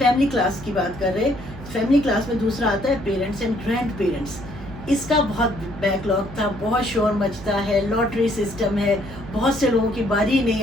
کلاس کی بات کر رہے. فیملی کلاس میں دوسرا آتا ہے پیرنٹس اینڈ گرینڈ پیرنٹس. اس کا بہت بیک لاگ تھا، بہت شور مچتا ہے، لاٹری سسٹم ہے، بہت سے لوگوں کی باری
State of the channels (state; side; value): noise; right; hum, 14 dB below the sound